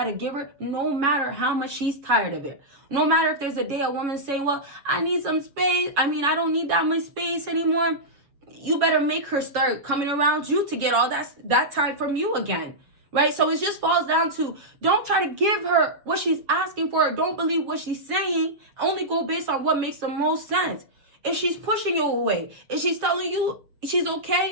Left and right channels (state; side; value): late; left; 7.2 ms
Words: to give her no matter how much she's tired of it. No matter if there's a day a woman saying, well, I need some space. I don't need that much space anymore. You better make her start coming around you to get all that time from you again. Right? So it just falls down to, don't try to give her what she's asking for. Don't believe what she's saying. Only go based on what makes the most sense. If she's pushing you away, if she's telling you she's